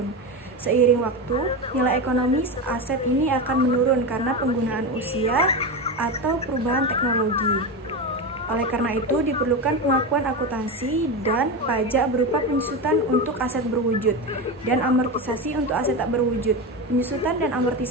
Seiring waktu, nilai ekonomis aset ini akan menurun karena penggunaan usia atau perubahan teknologi. Oleh karena itu, diperlukan pengakuan akuntansi dan pajak berupa penyusutan untuk aset berwujud dan amortisasi untuk aset tak berwujud. Penyusutan dan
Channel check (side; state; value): both; normal; correlation 0.18